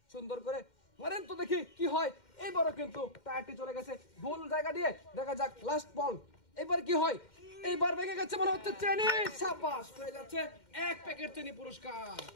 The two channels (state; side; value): late; right; 2.1 ms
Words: সুন্দর করে মারেন তো দেখি কি হয়। এবারও কিন্তু টায়ারটি চলে গেছে ভুল জায়গা দিয়ে, দেখা যাক লাস্ট বল, এবার কি হয়। এইবার ভেঙে গেছে মনে হচ্ছে, চেনি সাবাস, হয়ে যাচ্ছে 1 প্যাকেট চেনি পুরস্কার।